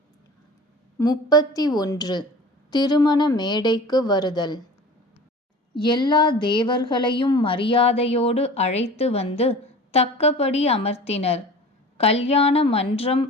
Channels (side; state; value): both; normal; correlation 0.40